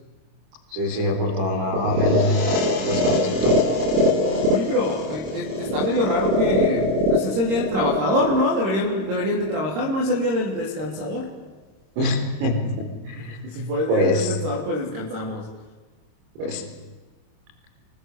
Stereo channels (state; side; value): late; left; 26 ms